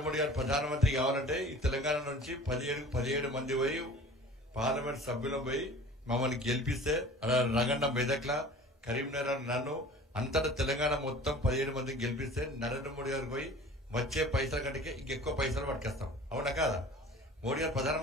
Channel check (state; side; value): normal; both; correlation 0.43